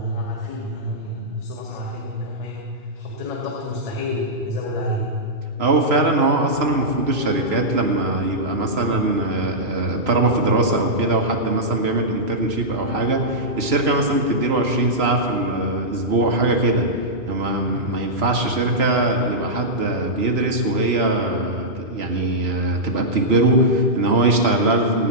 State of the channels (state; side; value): late; left; 3.0 ms